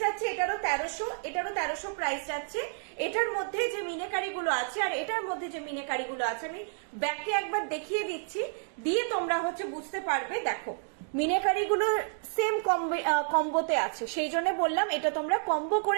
যাচ্ছে এটারও 1300, প্রাইস যাচ্ছে। এটার মধ্যে যে মিনেকারিগুলো আছে আর এটার মধ্যে যে মিনেকারিগুলো আছে, আমি ব্যাকে একবার দেখিয়ে দিচ্ছি, দিয়ে তোমরা হচ্ছে বুঝতে পারবে। দেখো মিনেকারিগুলো সেম কম্বোতে আছে, সেই জন্য বললাম এটা তোমরা কম্বো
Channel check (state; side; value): silent; left; digital silence